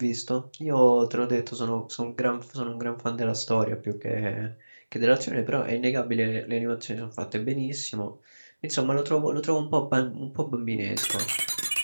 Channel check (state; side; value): inverted; both; correlation -1.00